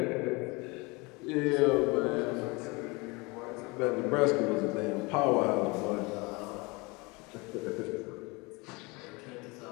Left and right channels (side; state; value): right; quieter; 26.4 dB